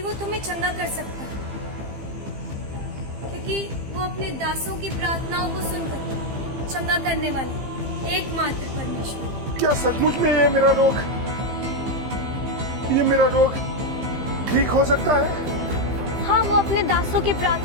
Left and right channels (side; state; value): left; late; 15 ms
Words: वो तुम्हें चंगा कर सकता है, क्योंकि वो अपने दासों की प्रार्थनाओं को सुनकर चंगा करने वाला एकमात्र परमेश्वर। क्या सचमुच में ये मेरा रोग ठीक हो सकता है? हाँ, वो अपने दासों की